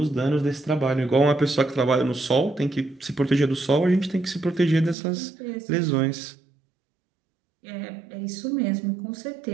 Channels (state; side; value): drops out; left; at 5.0 s